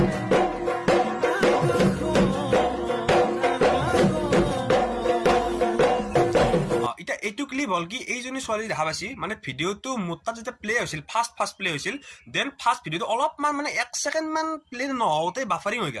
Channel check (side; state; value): both; identical; correlation 1.00